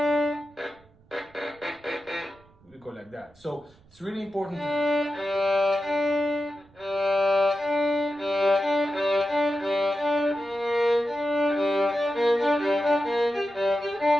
we go like that. So it's really important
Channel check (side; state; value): right; noise; rumble, 29 dB below the sound